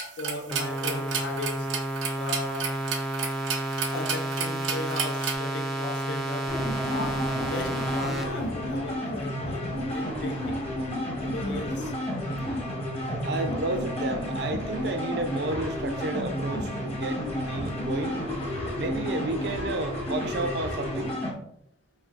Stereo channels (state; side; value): normal; both; correlation 0.45